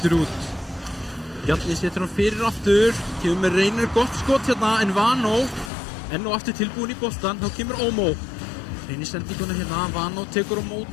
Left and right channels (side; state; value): right; drops out; at 5.7 s